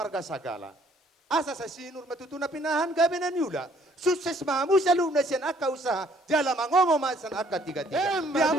sagala. Asa sa sinur matutuna pinahan gabi na niula. Sukses mahamu sa luna siyan aka usaha. Jala mangomo masan aka tiga-tiga. Di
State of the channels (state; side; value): normal; both; correlation 0.62